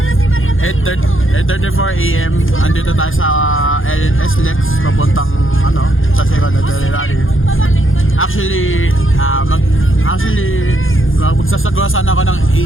8:34 AM. Andito tayo sa LS Lex papuntang sa Second Rally. Actually, magsasagawa sana ako ng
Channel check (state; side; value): late; right; 0.59 ms